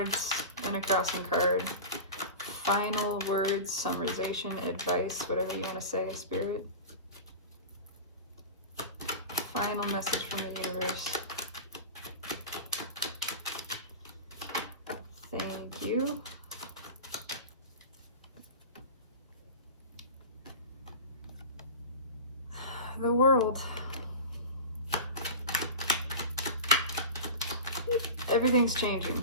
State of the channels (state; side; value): inverted; both; correlation -0.31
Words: and a crossing card. Final words, summarization, advice, whatever you want to say, Spirit. Final message from the universe. Thank you. The world. Everything's